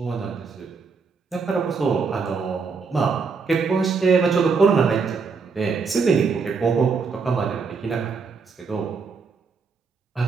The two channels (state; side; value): quieter; left; 5.1 dB